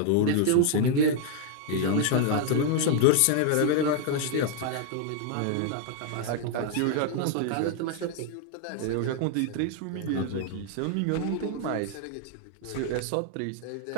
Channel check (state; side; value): different; both; correlation 0.00